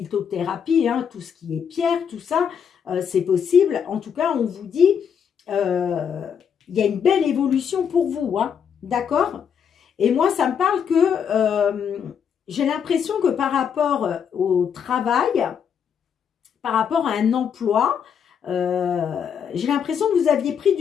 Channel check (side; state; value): right; quieter; 7.5 dB